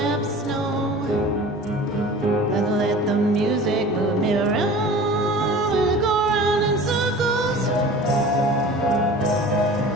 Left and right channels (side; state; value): both; normal; correlation 0.40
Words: no. Gonna let the music move me around. Will it go around in circles?